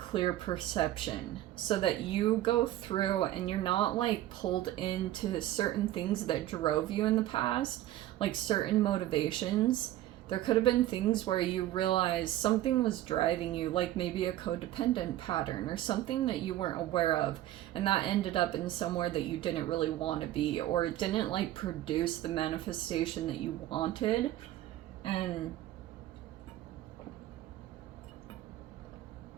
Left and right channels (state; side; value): quieter; left; 14.1 dB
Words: perception so that you go through and you're not like pulled into certain things that drove you in the past, like certain motivations. There could have been things where you realized something was driving you, like maybe a codependent pattern or something that you weren't aware of, and that ended up in somewhere that you didn't really want to be, or it didn't like produce the manifestation that you wanted. And